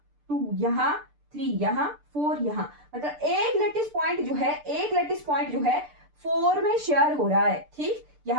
2 यहाँ, 3 यहाँ, 4 यहाँ, मतलब एक लैटिस पॉइंट जो है, एक लैटिस पॉइंट जो है 4 में शेयर हो रहा है। ठीक,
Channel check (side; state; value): left; late; 6.7 ms